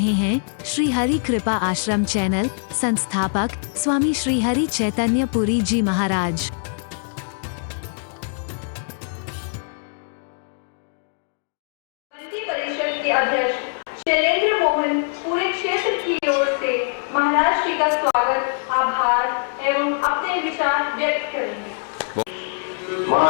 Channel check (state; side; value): silent; right; digital silence